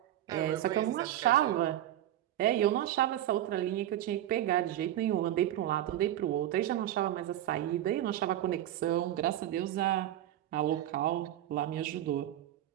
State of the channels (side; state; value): left; quieter; 12.7 dB